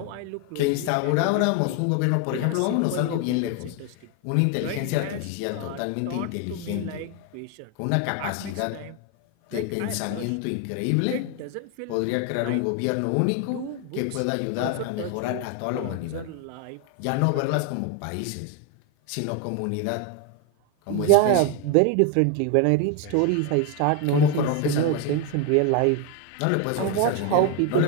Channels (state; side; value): different; both; correlation 0.01